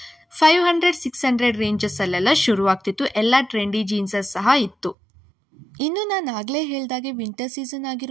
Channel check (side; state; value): left; drops out; at 5.0 s